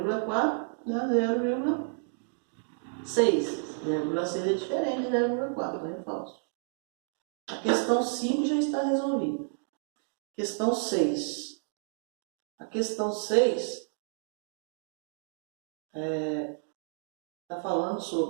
dá 0,6. 0,6 é diferente de 0,4, então é falso. A questão 5 já está resolvida. Questão 6. A questão 6 está falando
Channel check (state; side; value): silent; left; digital silence